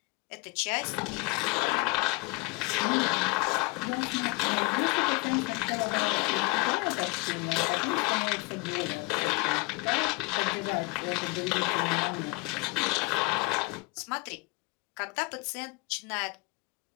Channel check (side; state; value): right; quieter; 24.9 dB